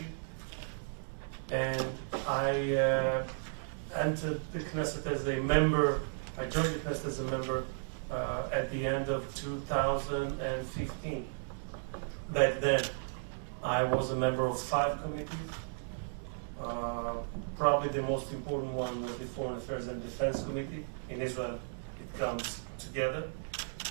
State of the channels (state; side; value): silent; left; 55 dB below the other